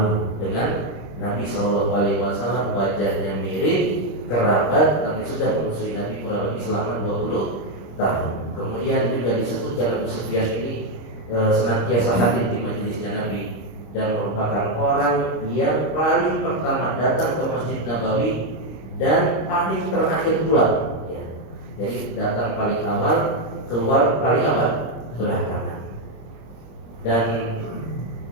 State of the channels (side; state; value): right; late; 26 ms